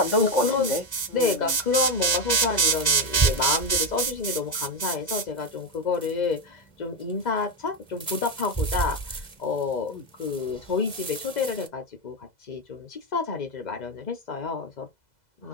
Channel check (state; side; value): late; right; 2.0 ms